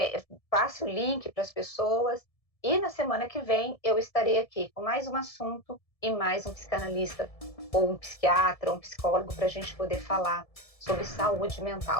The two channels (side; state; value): right; late; 1.7 ms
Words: passe o link para as pessoas. E na semana que vem eu estarei aqui com mais um assunto e mais um psicanalista ou um psiquiatra, ou um psicólogo para a gente poder falar sobre saúde